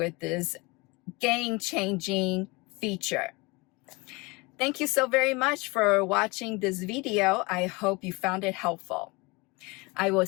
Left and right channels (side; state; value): right; quieter; 25.8 dB